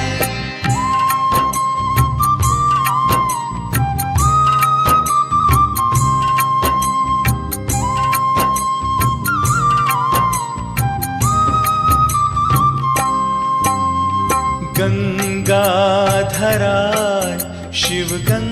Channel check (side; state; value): both; identical; correlation 1.00